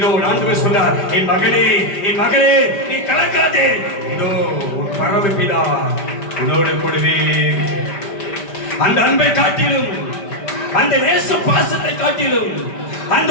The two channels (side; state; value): right; late; 5.1 ms